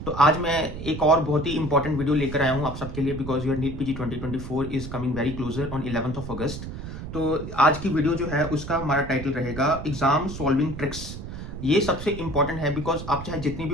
तो आज मैं एक और बहुत ही इंपॉर्टेंट वीडियो लेकर आया हूँ आप सबके लिए because your NEET PG 2024 is coming very closer on 11th of August. तो आज की वीडियो जो है उसका हमारा टाइटल रहेगा एग्जाम सॉल्विंग ट्रिक्स. ये सबसे इंपॉर्टेंट है बिकॉज आप चाहे जितनी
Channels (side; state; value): right; noise; rumble, 9 dB below the sound